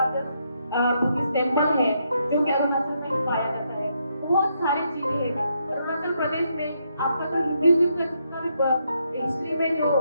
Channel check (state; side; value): inverted; both; correlation -0.77